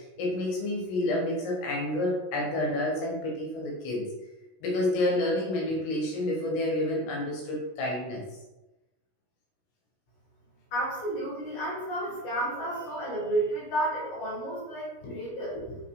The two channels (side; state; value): right; late; 17 ms